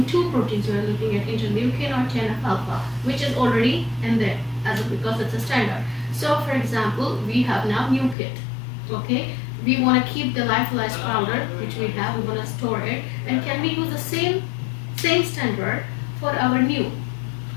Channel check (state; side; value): drops out; right; at 8.2 s